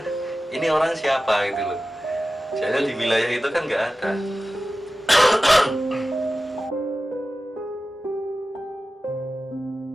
ini orang siapa gitu loh. Soalnya di wilayah itu kan nggak ada.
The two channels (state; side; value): normal; both; correlation 0.95